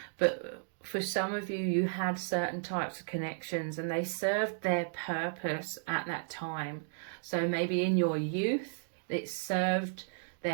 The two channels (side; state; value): left; silent; digital silence